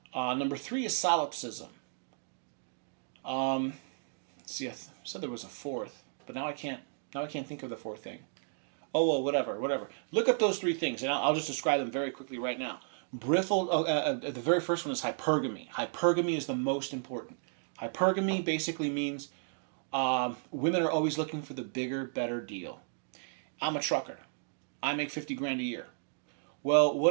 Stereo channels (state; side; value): silent; left; digital silence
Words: Number 3 is solipsism. I said there was a 4th, but now I can't think of the 4th thing. Oh well, whatever. Look up those 3 things, and I'll just describe them very quickly right now. The very first one is hypergamy. Hypergamy is the most important. Hypergamy basically means women are always looking for the bigger, better deal. I'm a trucker. I make $50,000 a year. Well,